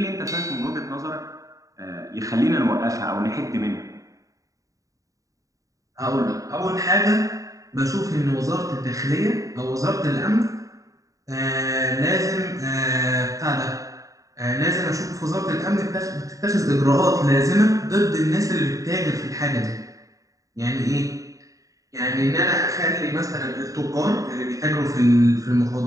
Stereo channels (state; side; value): late; left; 0.16 ms